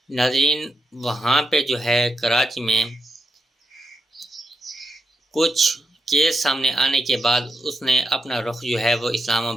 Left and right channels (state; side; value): normal; both; correlation 0.84